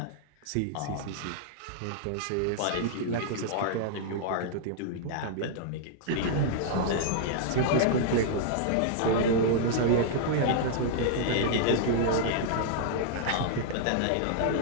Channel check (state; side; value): different; both; correlation -0.01